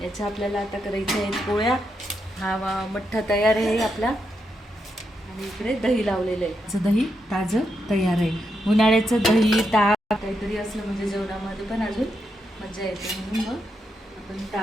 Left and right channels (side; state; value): both; normal; correlation 0.83